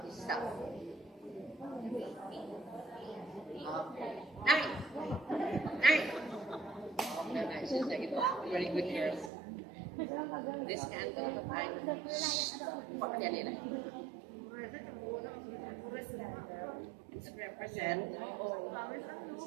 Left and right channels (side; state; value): left; drops out; at 9.3 s